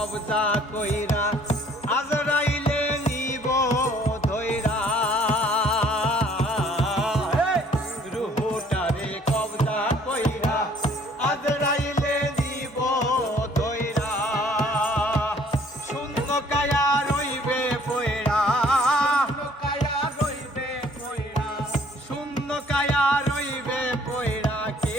কইরা আজরাইলে নিব ধইরা। রুহটারে কবজা কইরা আজরাইলে নিব ধইরা। শূন্য কায়া রইবে পয়রা, শূন্য কায়া রইবে পয়রা। কে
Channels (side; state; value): both; normal; correlation 0.58